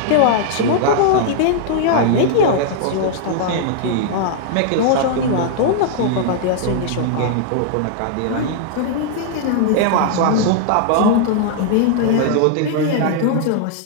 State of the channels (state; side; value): different; both; correlation -0.01